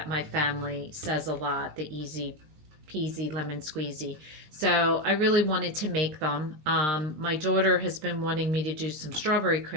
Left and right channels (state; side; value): late; left; 20 ms